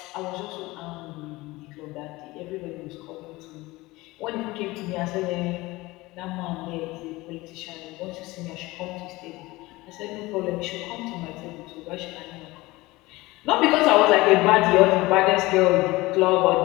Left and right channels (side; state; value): right; quieter; 20.6 dB